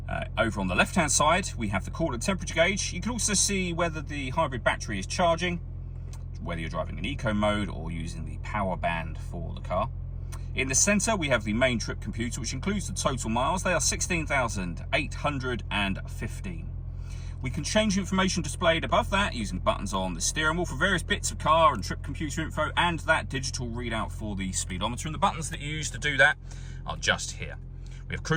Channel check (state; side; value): identical; both; correlation 1.00